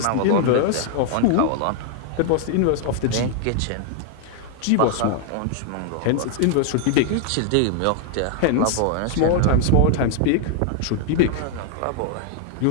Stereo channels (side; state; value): both; different; correlation 0.00